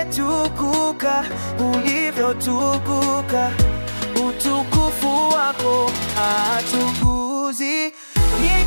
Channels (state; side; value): inverted; both; correlation -1.00